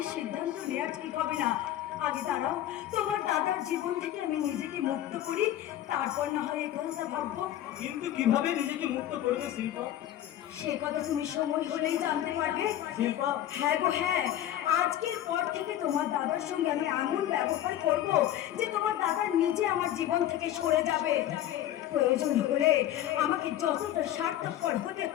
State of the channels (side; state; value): right; quieter; 12.3 dB